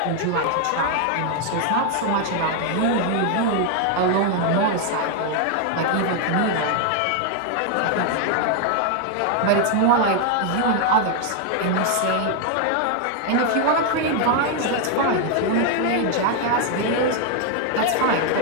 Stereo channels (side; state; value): both; different; correlation 0.00